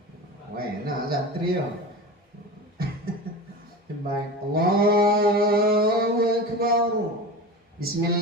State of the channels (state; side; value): normal; both; correlation 0.30